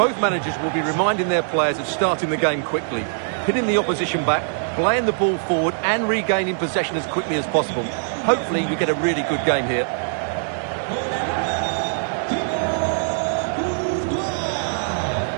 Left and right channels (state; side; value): silent; left; digital silence